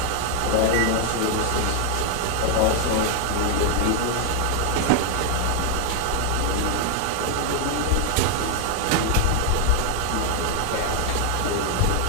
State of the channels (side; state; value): both; different; correlation 0.01